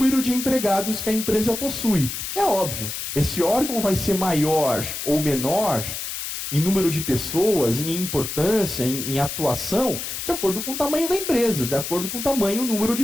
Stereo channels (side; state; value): left; noise; hiss, 6 dB below the sound